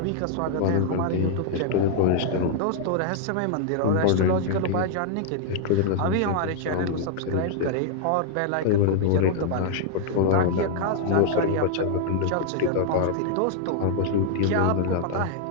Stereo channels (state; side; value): different; both; correlation 0.00